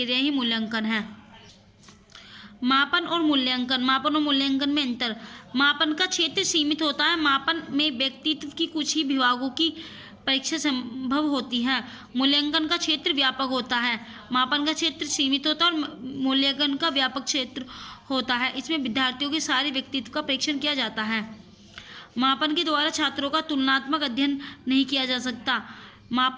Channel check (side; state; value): both; identical; correlation 1.00